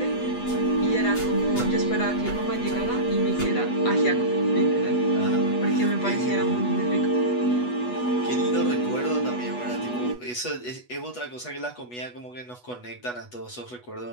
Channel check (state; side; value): late; right; 8.2 ms